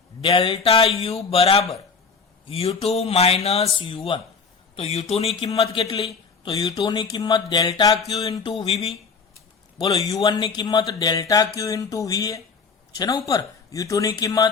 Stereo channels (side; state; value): right; quieter; 5.2 dB